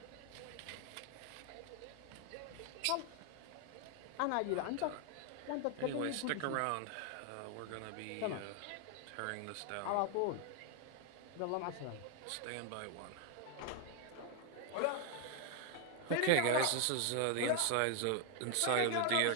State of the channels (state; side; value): different; both; correlation 0.01